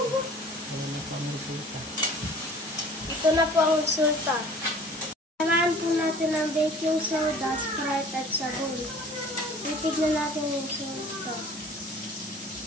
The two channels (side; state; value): both; normal; correlation 0.48